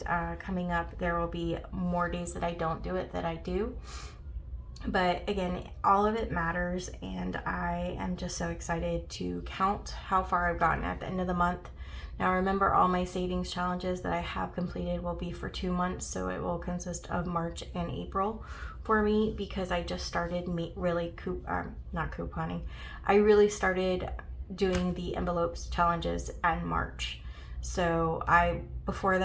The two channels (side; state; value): both; identical; correlation 1.00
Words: coming up, there will be more days that I don't do it that I do. But again, all of it matters, and I am just so excited to count how far I've gotten at the end of the month. Now remember, all my savings challenges that I have completed will be for 2 months, so it will consist of March and April for me, because I just started really not couponing. I really started doing the envelopes challenges in March. So before